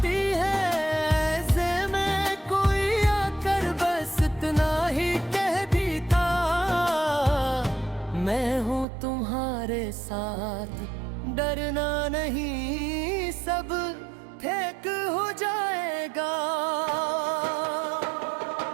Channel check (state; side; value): drops out; left; at 8.8 s